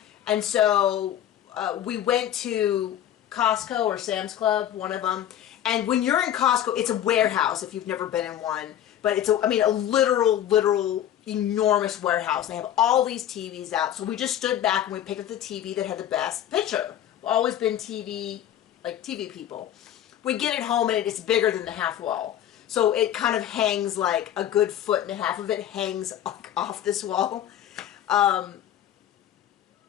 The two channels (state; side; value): quieter; right; 11.0 dB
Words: And so we went to Costco or Sam's Club, one of them. And when you're in Costco, it's a warehouse if you've never been in one. But it's a literal enormous warehouse. They have all these TVs out. So we just stood back and we picked up the TV that had the best picture. We've always been TV people. We get it home and it's bigger than the half wall. So it kind of hangs like a good 1.5 feet of it hangs off this wall. And